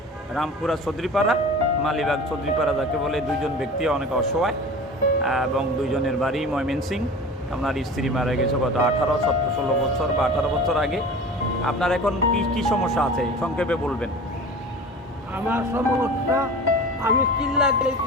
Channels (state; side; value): normal; both; correlation 0.37